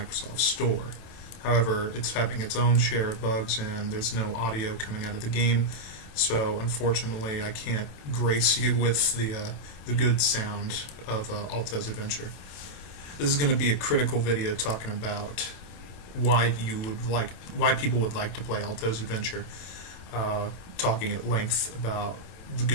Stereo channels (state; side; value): late; right; 27 ms